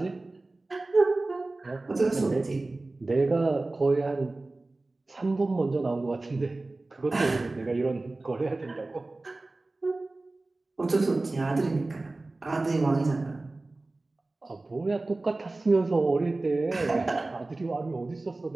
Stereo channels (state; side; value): quieter; left; 3.1 dB